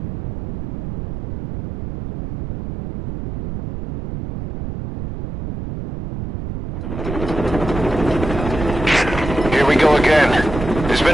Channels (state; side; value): noise; right; rumble, 8 dB below the sound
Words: Here we go again. There's been